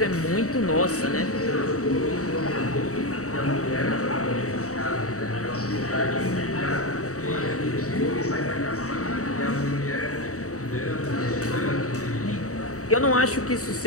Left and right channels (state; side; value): late; right; 0.65 ms